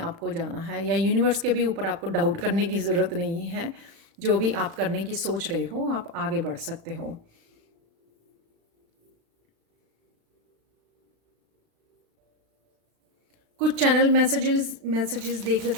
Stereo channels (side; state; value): left; late; 36 ms